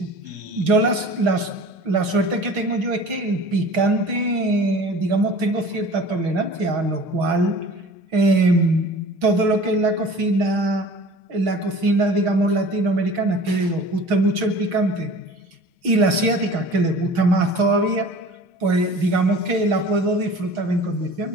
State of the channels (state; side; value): late; left; 6.3 ms